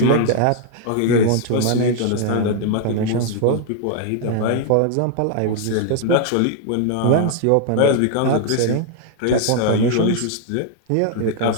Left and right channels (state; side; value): different; both; correlation 0.00